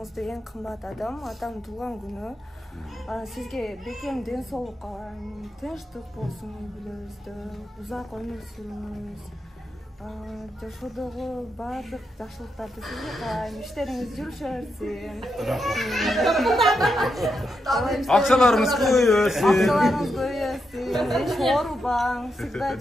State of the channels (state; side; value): normal; both; correlation 0.84